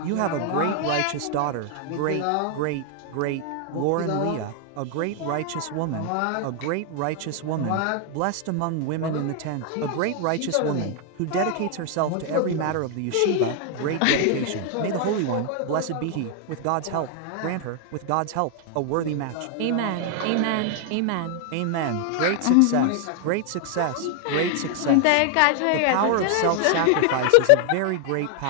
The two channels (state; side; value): different; both; correlation 0.00